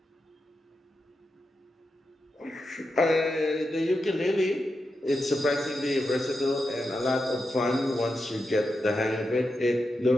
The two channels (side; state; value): both; normal; correlation 0.88